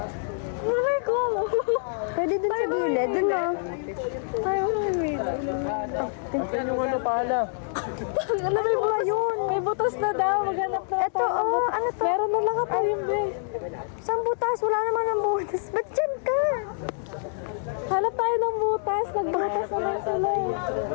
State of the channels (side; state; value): right; silent; digital silence